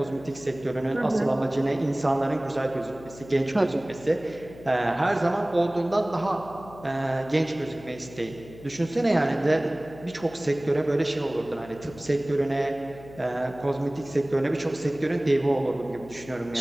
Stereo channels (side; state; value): left; noise; hum, 18 dB below the sound